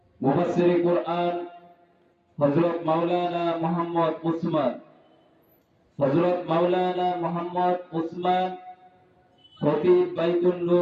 মুফাসসির কুরআন হযরত মাওলানা মোহাম্মদ উসমান খতিব বাইতুল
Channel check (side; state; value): both; identical; correlation 1.00